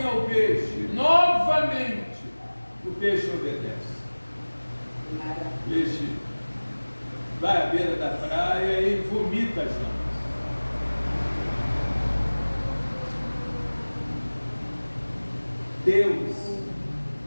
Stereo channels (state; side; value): inverted; both; correlation -1.00